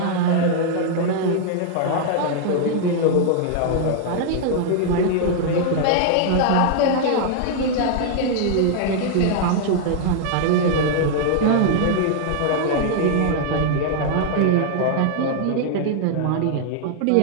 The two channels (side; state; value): both; different; correlation 0.00